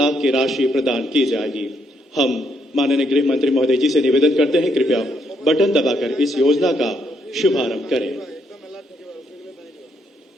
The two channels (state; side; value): normal; both; correlation 0.75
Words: की राशि प्रदान की जाएगी। हम माननीय गृह मंत्री महोदय जी से निवेदन करते हैं, कृपया बटन दबाकर इस योजना का शुभारंभ करें।